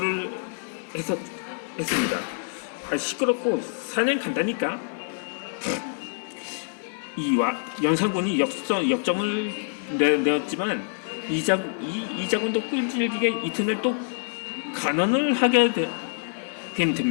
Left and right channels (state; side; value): silent; right; 56 dB below the other